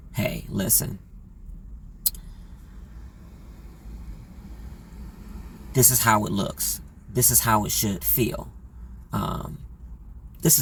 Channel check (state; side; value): identical; both; correlation 1.00